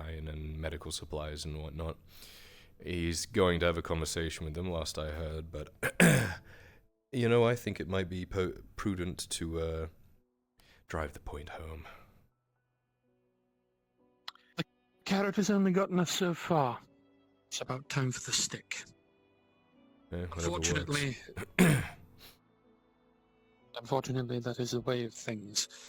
and medical supplies and whatnot. He's going to have a conversation with them, last I heard, but I think it might be prudent to drive the point home. The carrot has only gotten us so far. It's about time for the stick. Unfortunately, unfortunately, that is the way of things.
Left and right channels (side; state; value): both; identical; correlation 1.00